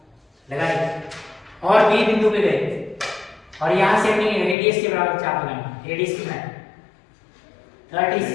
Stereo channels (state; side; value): drops out; right; at 4.5 s